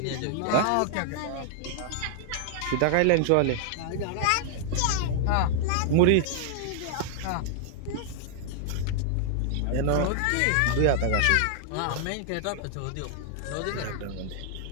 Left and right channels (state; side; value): different; both; correlation -0.01